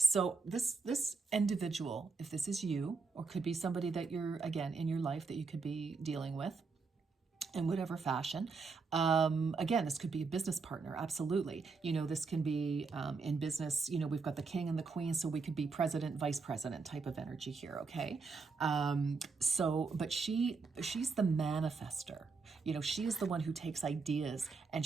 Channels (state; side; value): quieter; left; 4.6 dB